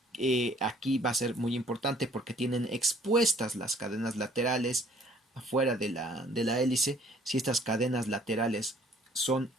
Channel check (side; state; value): both; normal; correlation 0.59